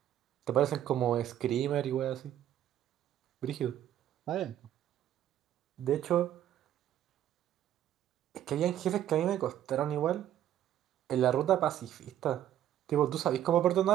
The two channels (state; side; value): quieter; left; 11.5 dB